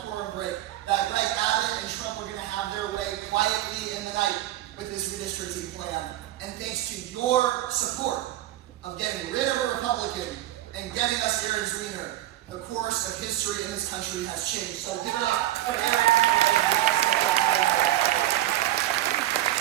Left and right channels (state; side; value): quieter; left; 14.4 dB